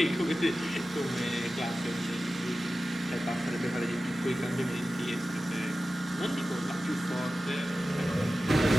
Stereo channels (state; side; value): normal; both; correlation 0.94